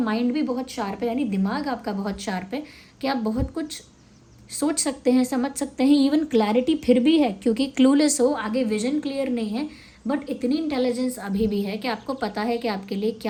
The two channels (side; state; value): both; identical; correlation 1.00